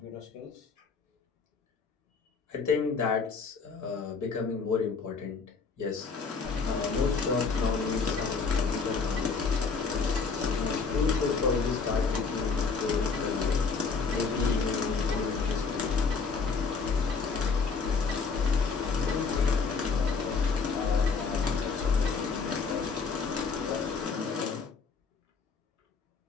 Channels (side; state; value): right; quieter; 4.9 dB